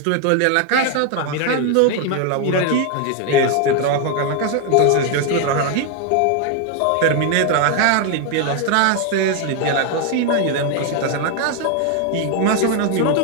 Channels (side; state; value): both; different; correlation 0.01